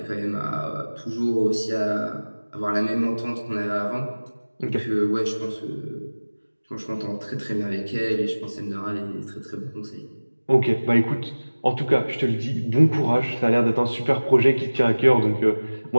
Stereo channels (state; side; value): inverted; both; correlation -1.00